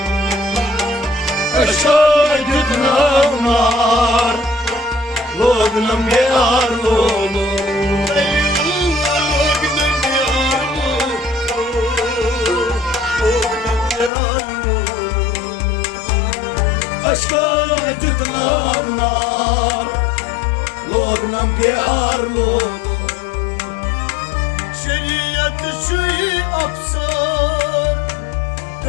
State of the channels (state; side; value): drops out; right; at 14.1 s